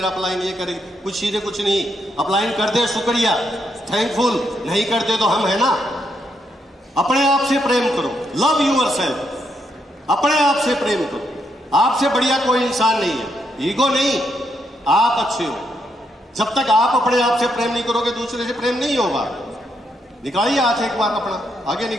अपलाइन ये करेगी, कुछ चीजें कुछ नहीं। अपलाइन कर दे शुक्रिया, थैंकफुल, नहीं करते तो हम है ना। अपने आप से प्रेम करो, लव यूअरसेल्फ। अपने आप से प्रेम करो, आपसे बढ़िया कोई इंसान नहीं है, ईगो नहीं, आप अच्छे हो। जब तक आप अपने आप से प्रेम नहीं करोगे, दूसरे से प्रेम नहीं होगा। निकालिए हाथ एक बार अपना, आगे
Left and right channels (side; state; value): both; normal; correlation 0.78